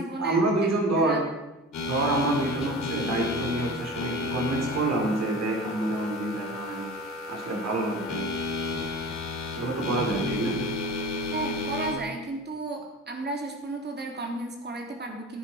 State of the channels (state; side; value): normal; both; correlation 0.35